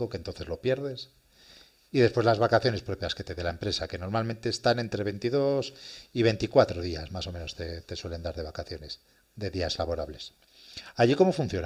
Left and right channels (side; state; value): both; identical; correlation 1.00